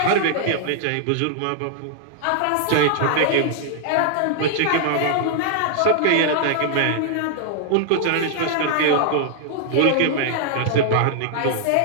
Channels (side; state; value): both; different; correlation -0.01